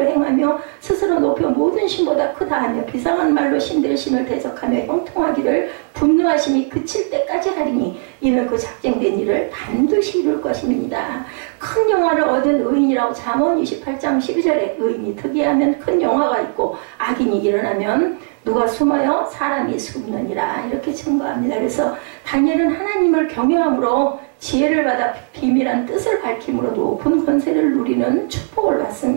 행하며 스스로 높여 모든 신보다 크다 하며 비상한 말로 신들의 신을 대적하며 형통하기를 분노하심이 그칠 때까지 하리니 이는 그 작정된 일을 반드시 이룰 것입니다. 큰 영화를 얻은 의인이라고 잠언 28장 12절에 의인이 특이하면 큰 영화가 있고 악인이 일어나면 누가 숨어요? 사람이 숨느니라 이렇게 증거합니다. 그래서 다니엘은 하나님을 경외함으로 지혜를 받아 비밀한 뜻을 밝힘으로 높은 권세를 누리는 축복을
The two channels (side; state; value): left; silent; 57 dB below the other